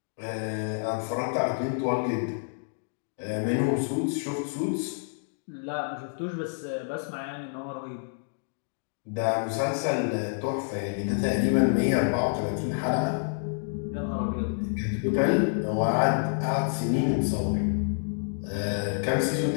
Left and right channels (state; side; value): silent; right; digital silence